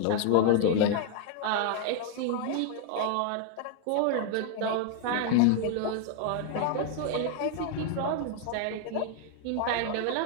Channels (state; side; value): different; both; correlation 0.00